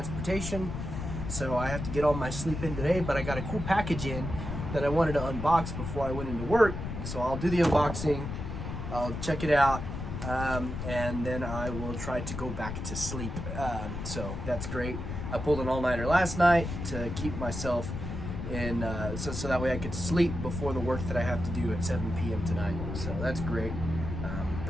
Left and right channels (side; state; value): left; noise; rumble, 6 dB below the sound